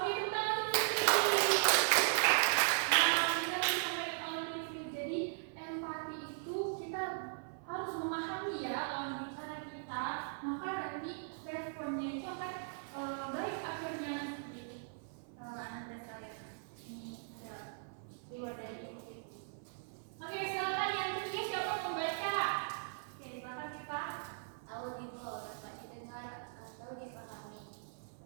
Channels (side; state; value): left; silent; 52 dB below the other